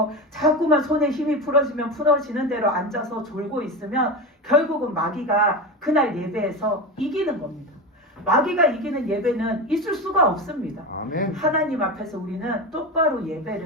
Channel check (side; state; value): both; normal; correlation 0.21